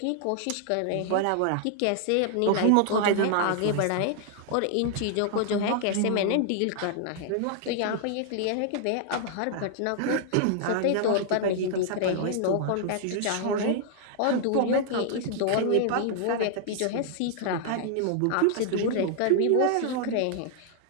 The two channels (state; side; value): different; both; correlation 0.00